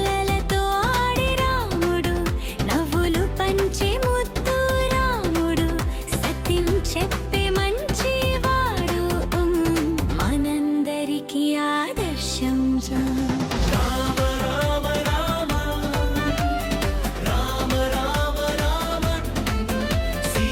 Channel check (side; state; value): both; identical; correlation 1.00